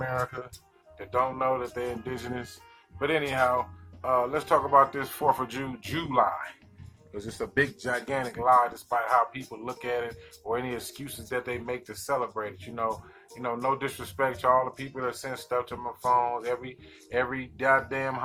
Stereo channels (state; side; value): identical; both; correlation 1.00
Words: that don't know that they're indigenous. But anyhow, let's talk about this 4th of July. Because it's a big, gigantic lie, despite how people look at it or any excuses that they make to celebrate it. No disrespect to all the people that send stuff to my phones. Every goddamn